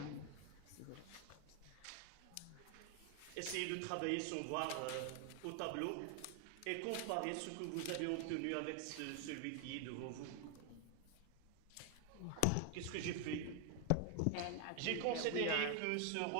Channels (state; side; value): different; both; correlation 0.00